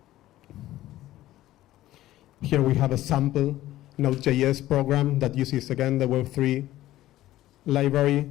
sample Node.js program that uses again the Web3 library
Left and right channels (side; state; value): right; quieter; 14.9 dB